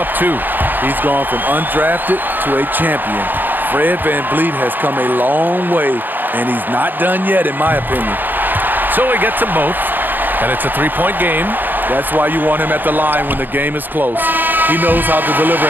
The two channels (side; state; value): left; late; 0.089 ms